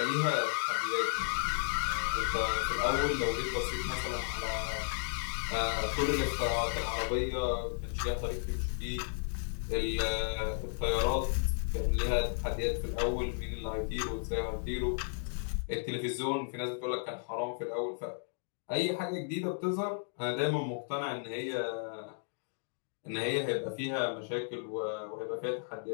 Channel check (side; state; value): right; silent; digital silence